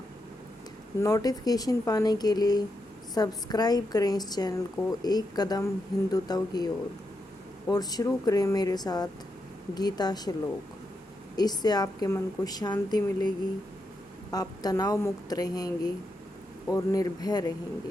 नोटिफिकेशन पाने के लिए सब्सक्राइब करें इस चैनल को एक कदम हिंदुत्व की ओर और शुरू करें मेरे साथ गीता श्लोक। इससे आपके मन को शांति मिलेगी, आप तनाव मुक्त रहेंगे और निर्भय रहेंगे।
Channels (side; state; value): both; normal; correlation 0.84